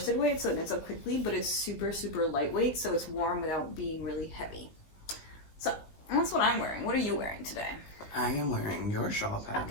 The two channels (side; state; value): right; late; 19 ms